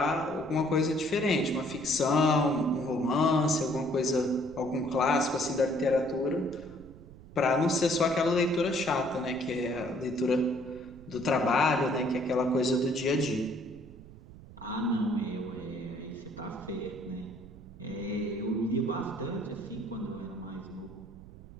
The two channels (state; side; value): noise; right; rumble, 18 dB below the sound